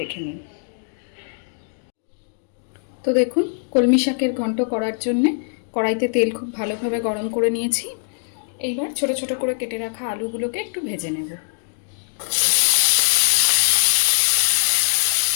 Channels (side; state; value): right; silent; digital silence